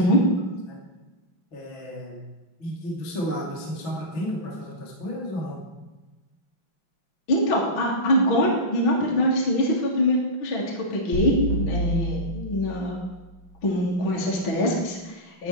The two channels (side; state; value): right; late; 6.1 ms